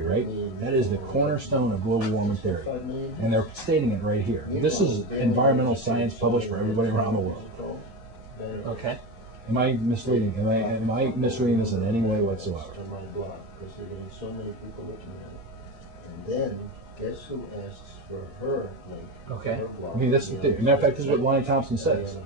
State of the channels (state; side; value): normal; both; correlation 0.20